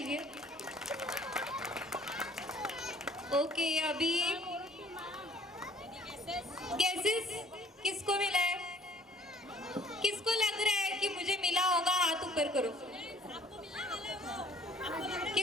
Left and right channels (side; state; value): both; normal; correlation 0.54